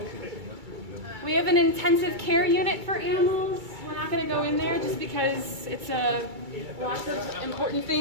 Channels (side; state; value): left; late; 2.3 ms